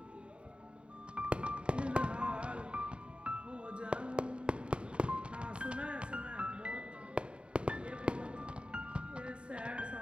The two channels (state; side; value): late; left; 0.055 ms